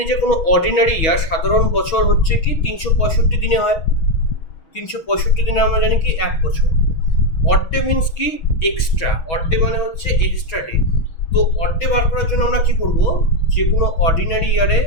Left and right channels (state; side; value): late; right; 6.2 ms